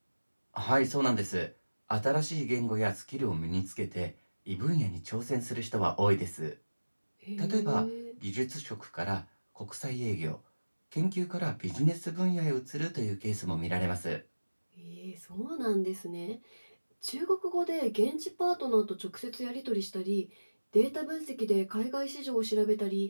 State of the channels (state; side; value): inverted; both; correlation -1.00